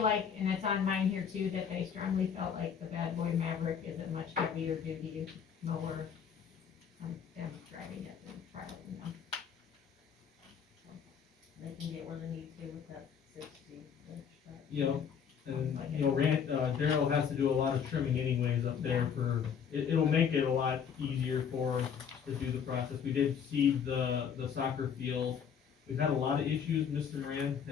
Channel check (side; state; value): right; quieter; 7.4 dB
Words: like, and it's on mine here too, that they strongly felt like the Bad Boy Maverick is a much heavier duty mower. Them driving it and trialing them. So, they can get where they need to with that 60-inch truck. Yep, and, Daryl has to do a lot of trimming anyways up there it'll make it a lot easier for us to do the process. We did seed the soccer field. We've had a lot of issues, Mr. Moran